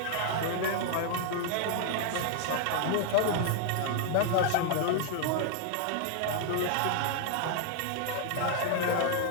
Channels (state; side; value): different; both; correlation 0.00